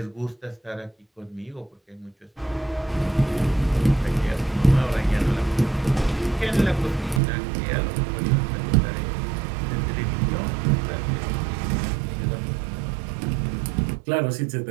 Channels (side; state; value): left; drops out; at 7.2 s